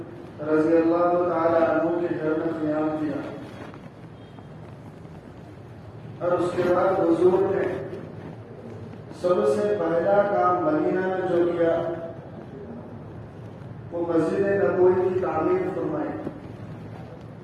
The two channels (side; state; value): both; identical; correlation 1.00